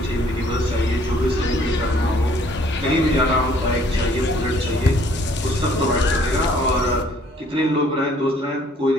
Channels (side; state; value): both; normal; correlation 0.60